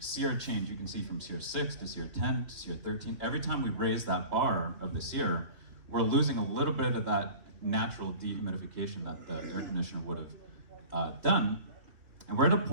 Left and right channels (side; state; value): left; late; 2.9 ms